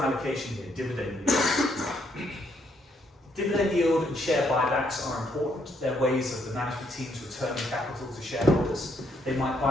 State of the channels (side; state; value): both; normal; correlation 0.72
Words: allocation here, dividend yield. Dividend yield and share buybacks are important. They're ways of the management teams returning capital to shareholders. They might